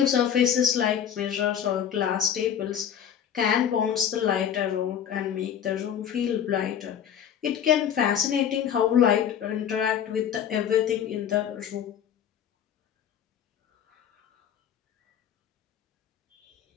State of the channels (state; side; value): quieter; right; 9.0 dB